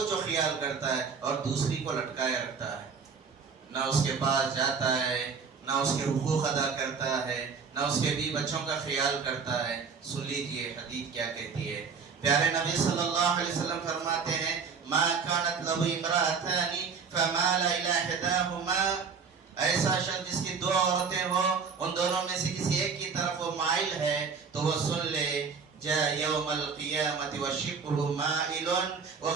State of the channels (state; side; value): quieter; left; 5.6 dB